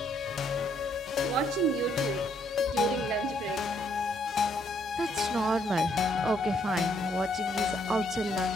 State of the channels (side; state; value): both; normal; correlation 0.70